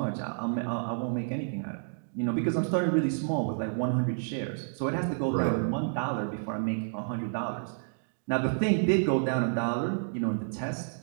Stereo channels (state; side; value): silent; left; digital silence